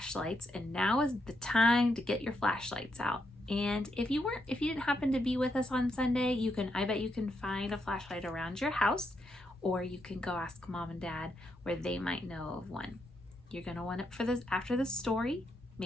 and now is the time to get your flashlights out. And if you didn't happen to be with us on Sunday, I bet you can find a flashlight around your house, or you can go ask Mom and Dad where they might know of one. You're gonna want it for this after the story,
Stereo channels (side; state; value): both; normal; correlation 0.81